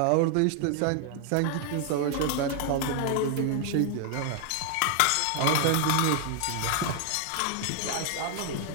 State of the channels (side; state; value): both; different; correlation 0.00